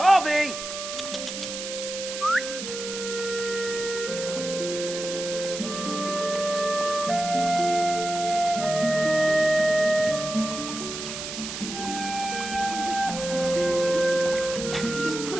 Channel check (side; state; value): right; noise; hiss, 7 dB below the sound